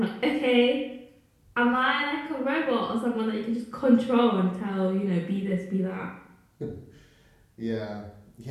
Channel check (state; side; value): identical; both; correlation 1.00